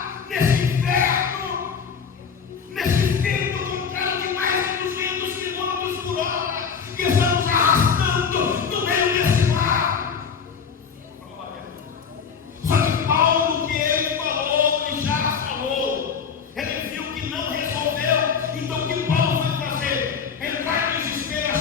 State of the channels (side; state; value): right; quieter; 6.5 dB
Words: nesse inverno, nesse vento contrário de mais de 200 km por hora, que estamos arrastando no meio desse mar? Só que Paulo, que ele falou e já falou, ele viu que não resolveu. Então o que Paulo vai fazer? Entrar em desespero,